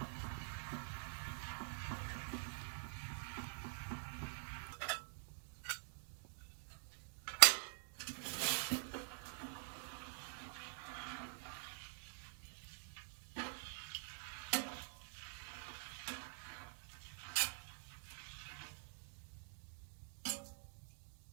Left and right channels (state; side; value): silent; left; digital silence